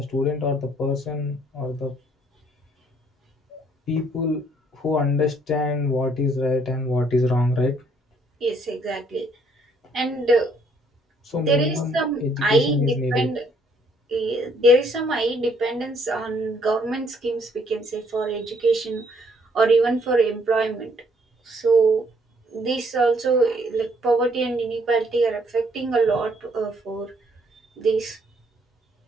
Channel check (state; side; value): normal; both; correlation 0.66